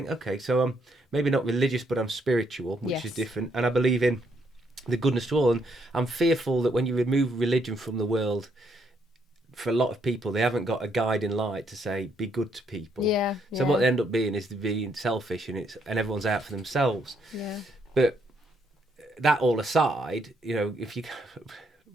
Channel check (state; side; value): normal; both; correlation 0.73